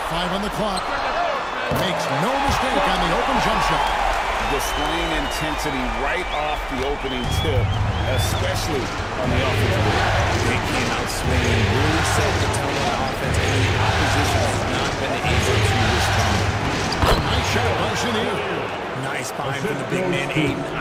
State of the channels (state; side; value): identical; both; correlation 1.00